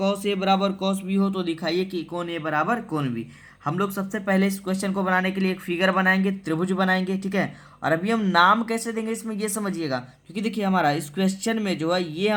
ए बराबर कॉस बी हो तो दिखाइए कि कोण ए बराबर कोण बी। हम लोग सबसे पहले इस क्वेश्चन को बनाने के लिए एक फिगर बनाएंगे, त्रिभुज बनाएंगे। ठीक है, और अभी हम नाम कैसे देंगे इसमें ये समझिएगा, क्योंकि देखिए हमारा इस क्वेश्चन में जो है ये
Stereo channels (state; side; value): identical; both; correlation 1.00